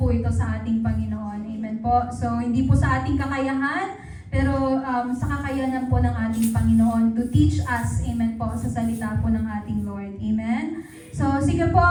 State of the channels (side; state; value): both; identical; correlation 1.00